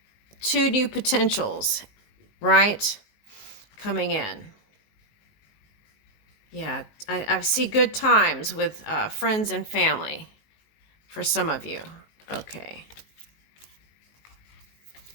two new potentials, right? Coming in. Yeah, I see good times with friends and family for some of you. Okay.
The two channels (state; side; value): late; right; 19 ms